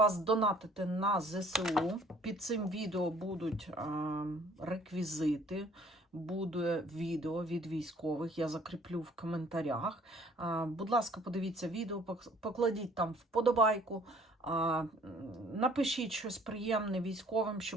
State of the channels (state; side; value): normal; both; correlation 0.56